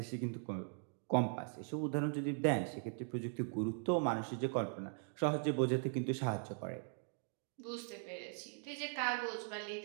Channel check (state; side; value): silent; left; 51 dB below the other